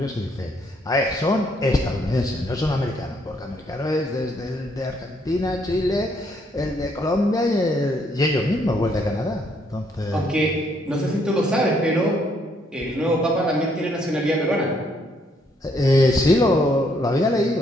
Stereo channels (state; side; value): normal; both; correlation 0.70